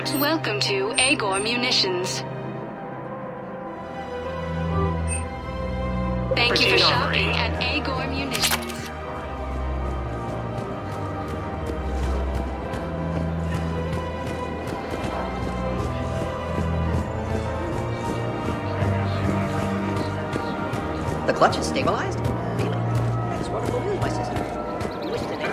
Welcome to Agor Munitions. Thank you for shopping at Agor Munitions. The clutch is stabilized? Really? That's wonderful news, my sister. You wish to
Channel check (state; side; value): identical; both; correlation 1.00